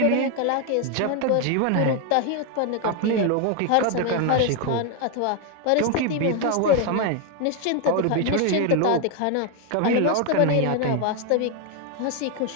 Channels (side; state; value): both; different; correlation 0.01